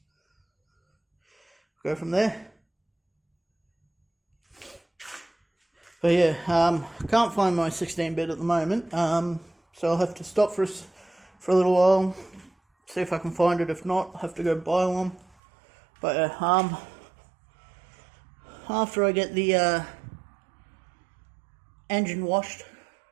Go from there. But yeah, I can't find my 16-bit at the moment, so I'll have to stop for a little while. See if I can find it. If not, I'll have to go buy one. But after I get the engine washed,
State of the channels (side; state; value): left; drops out; at 15.4 s